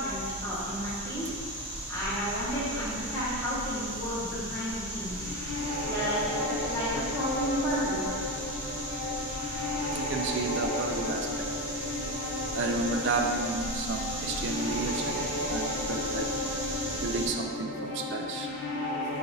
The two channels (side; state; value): both; normal; correlation 0.17